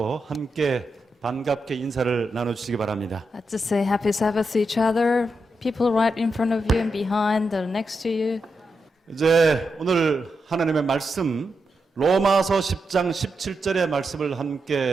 함께 반갑게 인사를 나눠주시기 바랍니다. To say happy Sabbath to each other, people right in front of you and behind, or next to you. 이제 오늘 하나님의 말씀 로마서 10장 17절의 말씀을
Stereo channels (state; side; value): normal; both; correlation 0.86